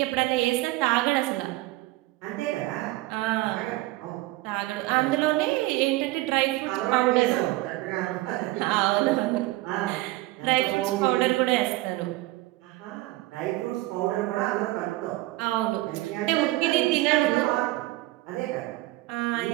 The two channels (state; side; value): quieter; left; 18.9 dB